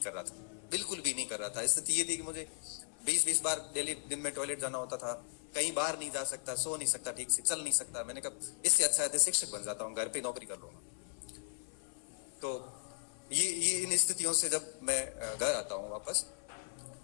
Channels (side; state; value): right; silent; 53 dB below the other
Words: कर रहा था, बिल्कुल भी नहीं कर रहा था। स्थिति ये थी कि मुझे 20-20 बार डेली दिन में टॉयलेट जाना होता था, कहीं बाहर नहीं जा सकता, सो नहीं सकता, ठीक से चल नहीं सकता। मैंने कहा इससे अच्छा है शिक्षक बन जाता हूँ, घर पे नौकरी कर लूंगा। तो ये इन स्थितियों से जब मैं घर आता हूँ वापस,